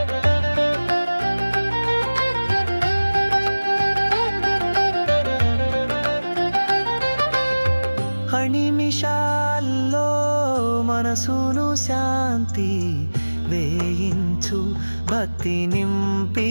నిమిషాల్లో మనసును శాంతి వేయించు, భక్తి నింపి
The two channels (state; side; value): inverted; both; correlation -1.00